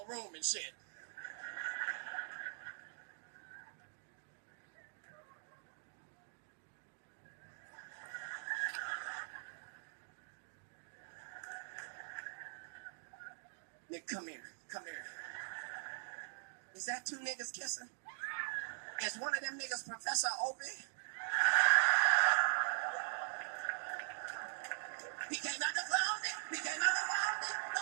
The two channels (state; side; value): silent; left; digital silence